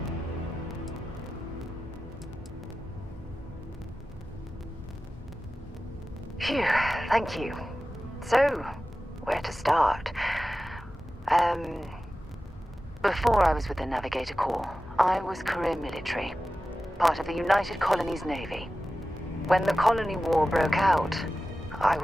Phew, thank you. So, where to start? Before I was with the Navigator Corps, I was career military, part of the United Colonies Navy. When the colony war broke out, I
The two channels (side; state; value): both; normal; correlation 0.94